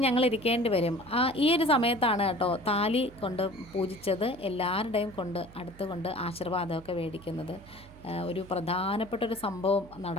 ഞങ്ങൾ ഇരിക്കേണ്ടി വരും. ഈ ഒരു സമയത്താണ് കേട്ടോ താലി കൊണ്ട് പൂജിച്ചത് എല്ലാവരുടെയും അടുത്തുകൊണ്ട് ആശീർവാദമൊക്കെ മേടിക്കുന്നത്. ഒരു പ്രധാനപ്പെട്ടൊരു സംഭവം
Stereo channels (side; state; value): right; noise; hum, 21 dB below the sound